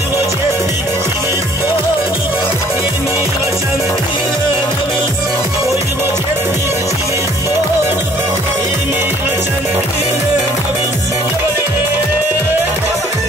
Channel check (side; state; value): both; normal; correlation 0.58